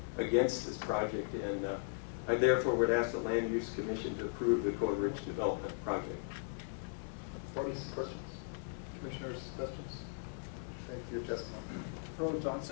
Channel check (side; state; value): right; silent; digital silence